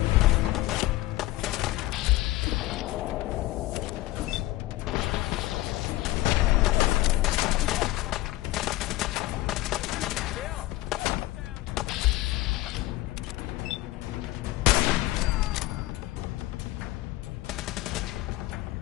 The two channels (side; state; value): right; quieter; 17.5 dB